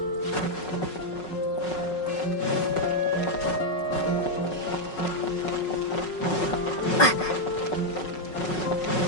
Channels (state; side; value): late; right; 5.4 ms